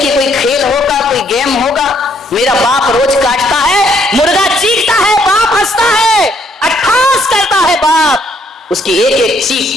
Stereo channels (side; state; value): both; normal; correlation 0.69